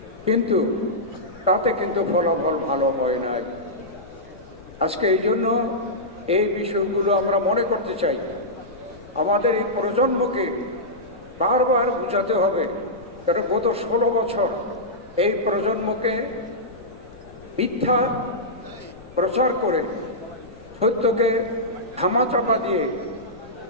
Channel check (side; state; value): left; noise; rumble, 23 dB below the sound